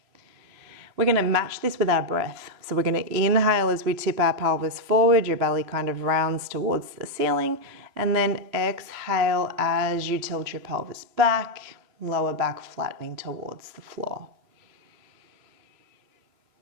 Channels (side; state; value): left; late; 3.1 ms